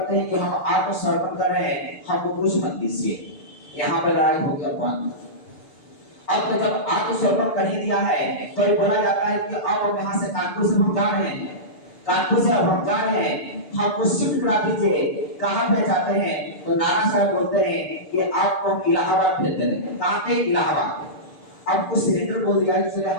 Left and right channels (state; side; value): late; right; 6.8 ms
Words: हैं कि हम आत्मसमर्पण कर रहे हैं, हमको कुछ मत कीजिए। यहाँ पे लड़ाई हो गया बंद। अब तो जब आत्मसमर्पण कर ही दिया है तो ये बोला जाता है कि अब हम यहाँ से कानपुर से हम जा रहे हैं, कानपुर से अब हम जा रहे हैं, हमको शिफ्ट करा दीजिए। कहाँ पे जाते हैं? तो नाना साहब बोलते हैं कि आपको हम इलाहाबाद भेज दे रहे हैं। कहाँ पे? इलाहाबाद। अब कुछ सिलेंडर बोल दिया कि चले